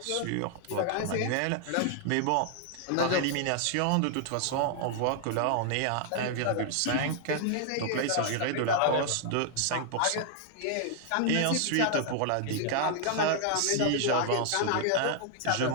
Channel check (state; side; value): different; both; correlation 0.00